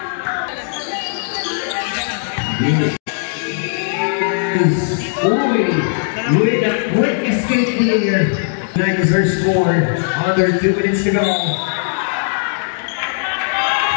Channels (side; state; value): right; silent; digital silence